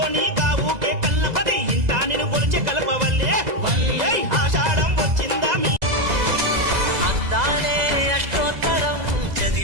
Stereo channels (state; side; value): late; left; 2.0 ms